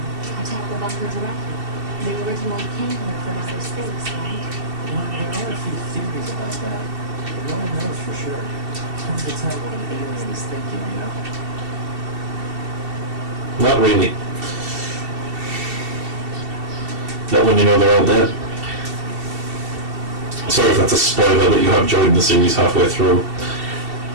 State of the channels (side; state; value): left; late; 2.7 ms